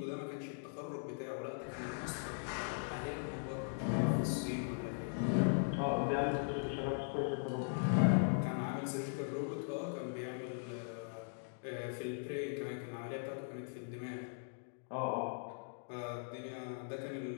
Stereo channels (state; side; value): silent; right; digital silence